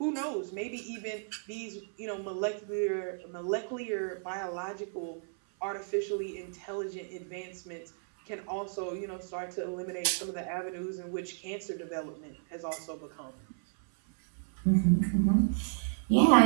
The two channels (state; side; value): silent; left; 56 dB below the other